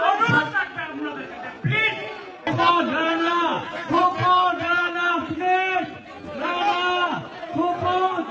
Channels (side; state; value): both; identical; correlation 1.00